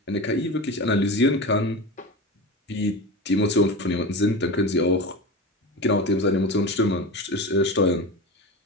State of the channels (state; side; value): normal; both; correlation 0.26